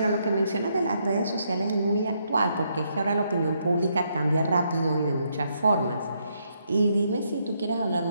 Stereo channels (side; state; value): both; inverted; correlation -0.76